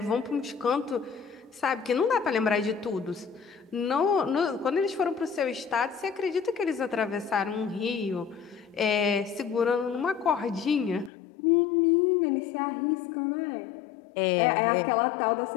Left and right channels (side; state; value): right; drops out; at 11.1 s